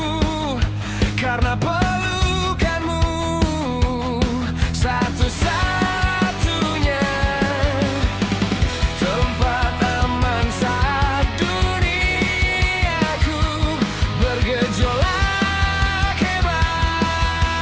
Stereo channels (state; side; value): identical; both; correlation 1.00